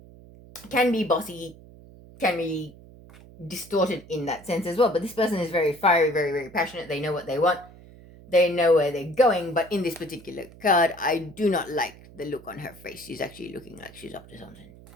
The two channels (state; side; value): noise; right; hum, 21 dB below the sound